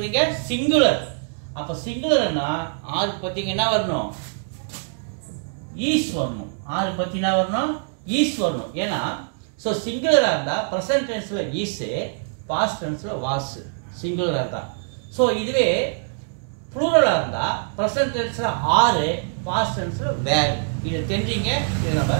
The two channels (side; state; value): left; silent; digital silence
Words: singular. அப்ப singularனா r பத்திங்க என்ன வரணும்? is வரணும். r பத்தி என்ன வரணும்? is வரணும். ஏனா சோ singular இருந்தா present tenseல is, past tenseல was. singular இருந்தா. சோ இதுவே plural இருந்தா present tenseல are, past tenseல were. இத தெரிஞ்சீங்க. இத நம்ம